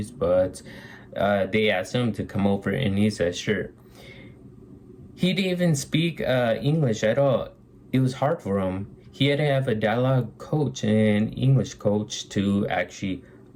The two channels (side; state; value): both; identical; correlation 1.00